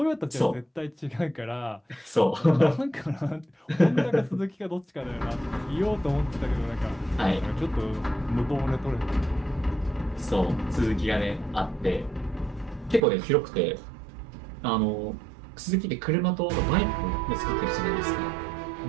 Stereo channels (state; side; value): drops out; left; at 13.0 s